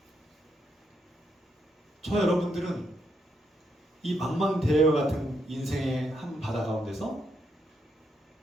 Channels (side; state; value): both; normal; correlation 0.79